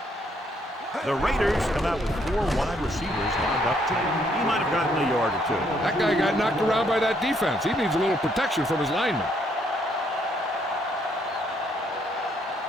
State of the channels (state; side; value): normal; both; correlation 0.70